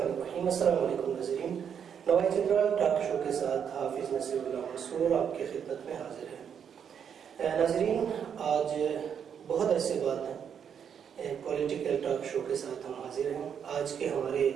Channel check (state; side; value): quieter; left; 7.8 dB